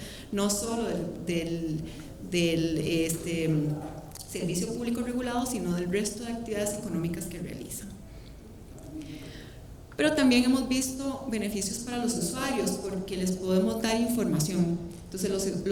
no solo del servicio público regulado, sino del resto de actividades económicas que realizan. Pero también hemos visto beneficios para los usuarios, porque les podemos dar información. Entonces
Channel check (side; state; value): both; identical; correlation 1.00